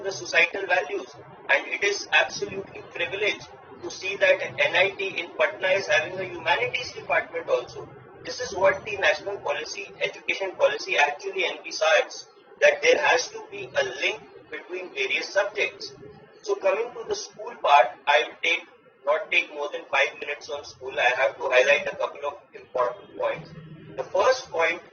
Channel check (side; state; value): both; identical; correlation 1.00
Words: the societal values. And it is absolutely privileged to see that NIT in Patna is having a humanities department also. This is what the national policy, education policy actually envisages, that there has to be a link between various subjects. So coming to the school part, I will not take more than 5 minutes on school. I have to highlight a couple of important points. The first point